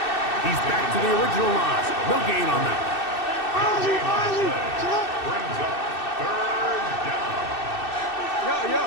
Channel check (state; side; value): late; right; 2.6 ms